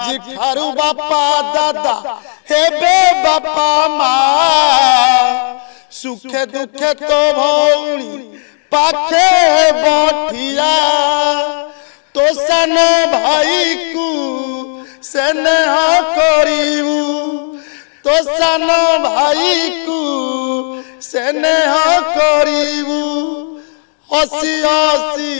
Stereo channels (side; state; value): right; silent; 58 dB below the other